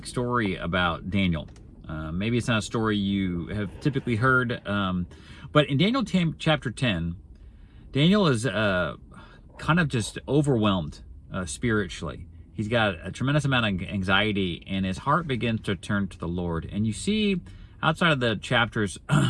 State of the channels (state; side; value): identical; both; correlation 1.00